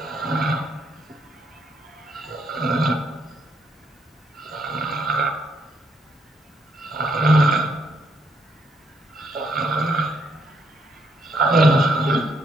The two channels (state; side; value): normal; both; correlation 0.73